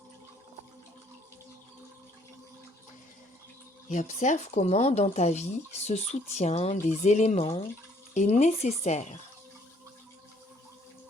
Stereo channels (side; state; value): both; normal; correlation 0.63